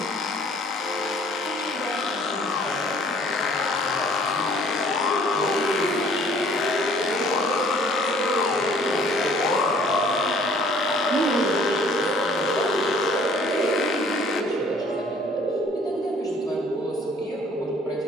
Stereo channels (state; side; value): normal; both; correlation 0.56